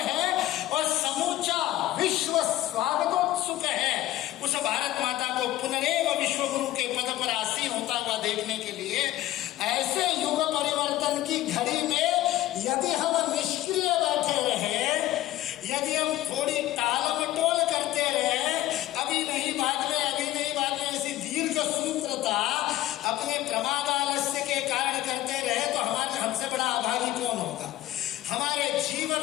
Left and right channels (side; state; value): right; quieter; 15.1 dB